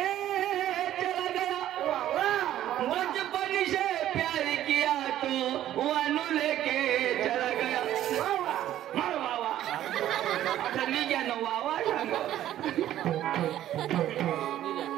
चला गया बचपन से प्यार किया तो वानू लेके चला गया मार बाबा आता मी क्या नो बाबा सांगो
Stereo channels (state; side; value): quieter; left; 12.5 dB